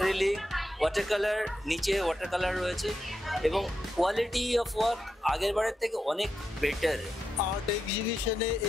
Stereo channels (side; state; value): both; normal; correlation 0.86